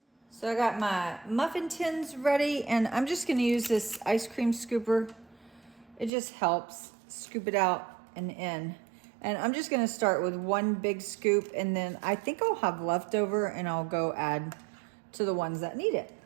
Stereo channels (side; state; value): left; drops out; at 6.1 s